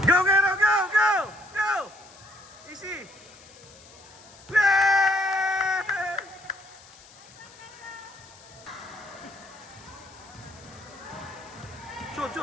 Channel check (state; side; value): noise; left; hiss, 22 dB below the sound